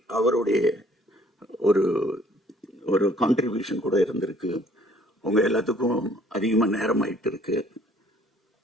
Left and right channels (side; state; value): both; normal; correlation 0.59